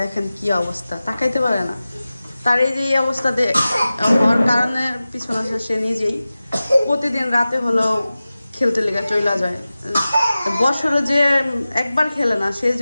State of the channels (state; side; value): inverted; both; correlation -0.96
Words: কি অবস্থা, তাকাইতে পারে না। তার এই যে অবস্থা হওয়ার কারণের পিছনে সে নিজেই প্রতিদিন রাতে হলেও খেলতে লেগে চলে যায়। বছরে যে একবার খেলে না, সে